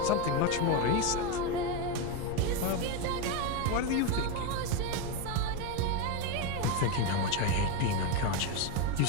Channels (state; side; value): different; both; correlation 0.04